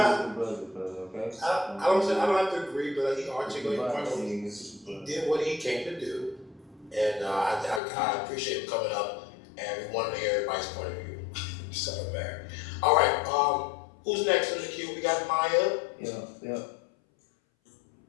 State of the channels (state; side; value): drops out; right; at 7.8 s